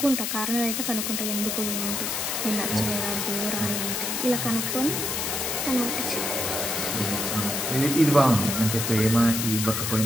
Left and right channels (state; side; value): noise; left; hiss, 1 dB below the sound